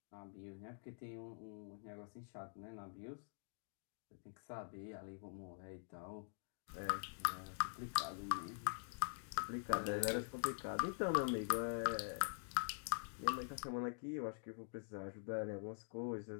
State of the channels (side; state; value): right; silent; digital silence